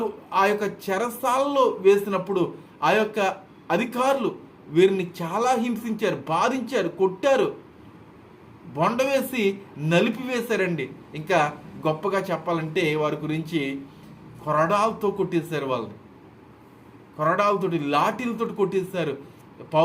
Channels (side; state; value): both; identical; correlation 1.00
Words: ఆ యొక్క చెరసాలలో వేసినప్పుడు ఆ యొక్క అధికారులు వీరిని చాలా హింసించారు, బాధించారు, కొట్టారు, బొండ వేసి నలిపివేశారండి. ఇంకా గొప్పగా చెప్పాలంటే వారి గురించి కొరడాలతో కొట్టేశారు, వాళ్ళని కొరడాలతోటి లాఠీలతో కొట్టేశారు